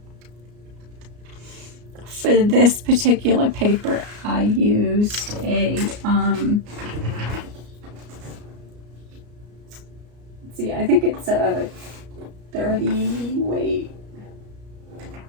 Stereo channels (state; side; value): late; left; 34 ms